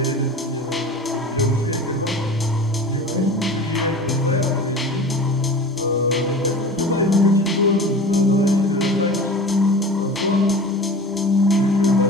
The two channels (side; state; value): both; normal; correlation 0.36